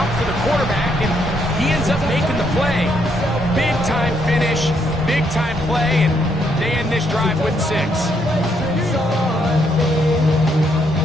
for the quarterback, and he ends up making the play. Big time finish, big time play, and they end this drive with 6.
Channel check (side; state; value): both; normal; correlation 0.74